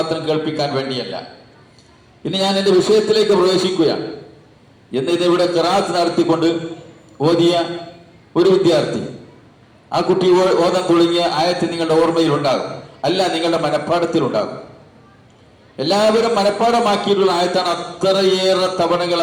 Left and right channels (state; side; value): identical; both; correlation 1.00